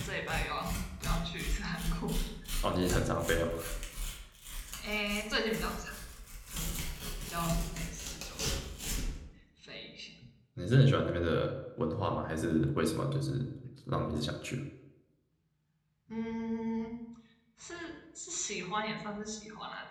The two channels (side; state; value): both; identical; correlation 1.00